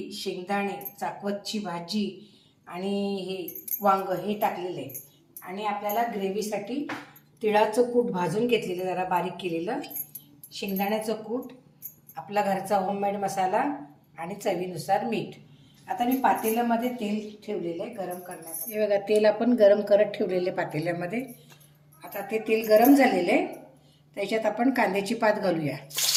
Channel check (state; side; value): identical; both; correlation 1.00